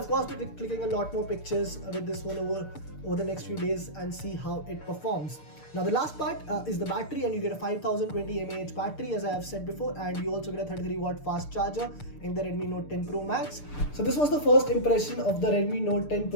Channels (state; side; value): late; right; 6.7 ms